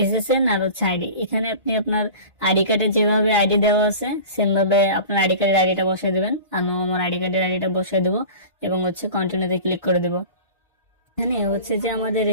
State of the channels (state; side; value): inverted; both; correlation -0.37